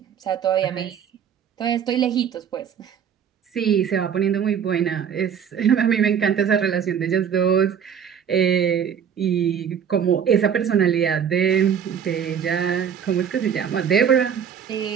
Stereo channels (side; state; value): left; quieter; 8.0 dB